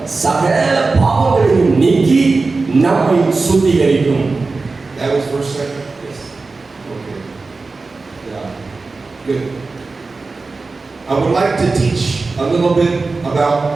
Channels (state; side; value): quieter; left; 3.9 dB